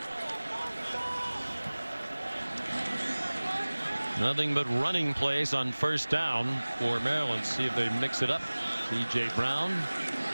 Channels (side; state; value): both; inverted; correlation -1.00